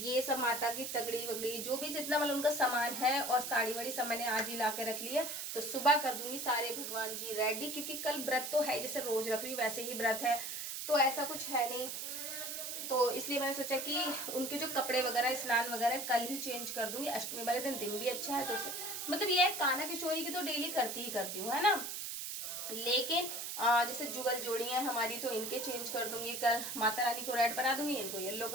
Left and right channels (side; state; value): right; noise; hiss, 5 dB below the sound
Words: सब माता की तगड़ी वगड़ी जो भी जितना मतलब उनका सामान है और साड़ी वाड़ी सब मैंने आज ही ला के रख लिया, तो सुबह कर दूंगी सारे भगवान जी रेडी, क्योंकि कल व्रत तो है, जैसे रोज रख रही हूँ वैसे ही व्रत है, तो ऐसा कुछ है नहीं। तो इसलिए मैंने सोचा कि उनके जो कपड़े वगैरह स्नान वगैरह कल ही चेंज कर दूंगी। अष्टमी वाले दिन भी अच्छा है, तो मतलब ये है कान्हा किशोरी की तो डेली करती ही करती हूँ, है ना। लेकिन जैसे जुगल जोड़ी है हमारी, तो इनके चेंज कर दूंगी कल। माता रानी को रेड बना दूंगी, इनको येलो